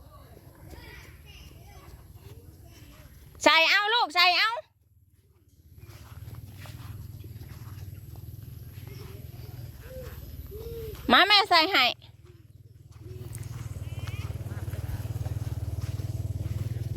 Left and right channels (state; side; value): identical; both; correlation 1.00